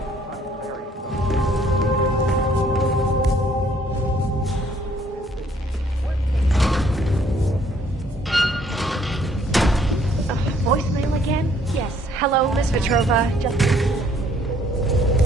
Voicemail again? Yes. Hello, Miss Petrova. Just...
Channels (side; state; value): both; normal; correlation 0.63